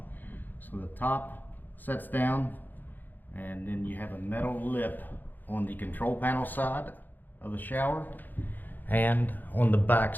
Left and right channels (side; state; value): right; late; 0.087 ms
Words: so the top sets down, and then you have a metal lip on the control panel side of the shower and on the back